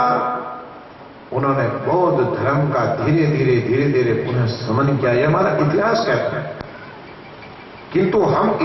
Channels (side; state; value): both; identical; correlation 1.00